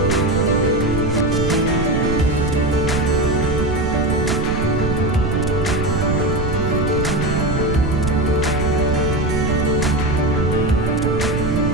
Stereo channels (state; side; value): noise; right; rumble, 2 dB below the sound